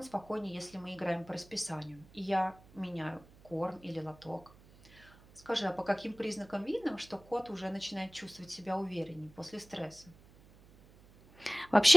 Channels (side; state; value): right; noise; hum, 24 dB below the sound